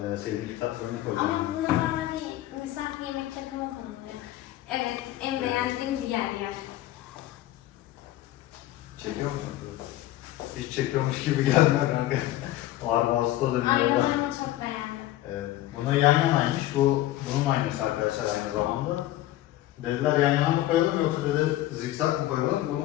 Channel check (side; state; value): right; quieter; 14.9 dB